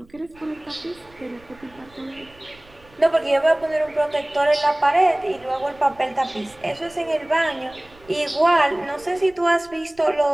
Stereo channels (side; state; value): right; noise; rumble, 26 dB below the sound